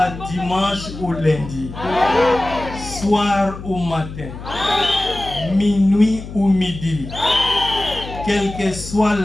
dimanche ou lundi, soir ou matin, minuit ou midi, quelle que soit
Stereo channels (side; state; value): left; noise; hum, 12 dB below the sound